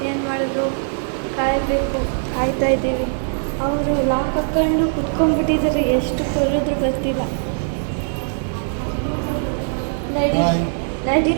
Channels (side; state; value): left; silent; digital silence